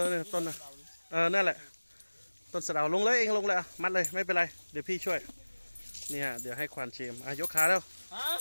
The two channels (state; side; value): inverted; both; correlation -1.00